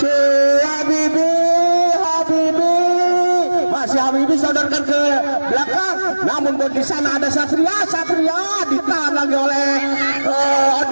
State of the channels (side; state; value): both; inverted; correlation -1.00